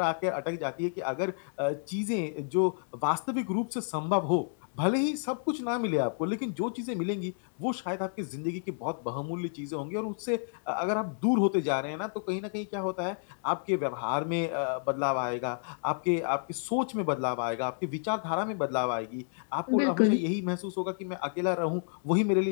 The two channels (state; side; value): silent; right; digital silence